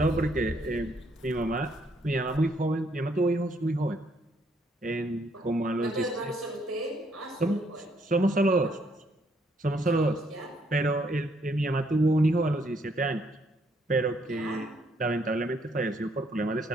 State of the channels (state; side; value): normal; both; correlation 0.70